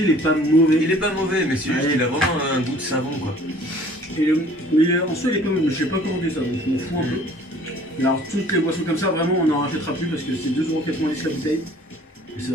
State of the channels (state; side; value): normal; both; correlation 0.52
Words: il est pas mauvais. Il est pas mauvais, mais c'est juste Ouais. qu'il a vraiment un goût de savon, quoi. Mais en soi, il est pas mauvais. Je sais pas commandé ça, donc je m'en fous un peu. Et alors, toutes les boissons comme ça, vraiment, on n'en rachètera plus parce que c'est 2,90€ la bouteille. Et c'est